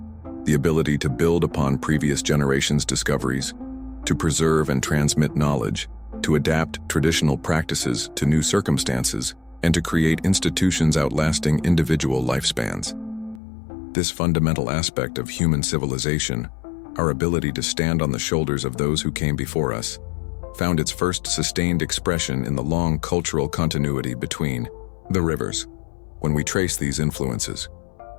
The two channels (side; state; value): right; drops out; at 13.4 s